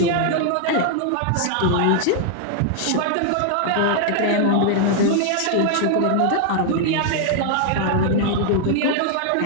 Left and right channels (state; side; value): different; both; correlation 0.00